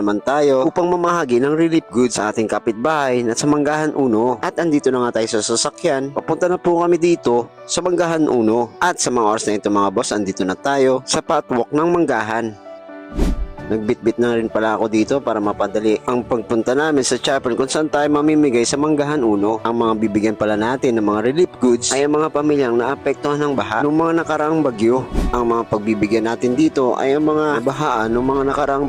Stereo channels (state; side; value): identical; both; correlation 1.00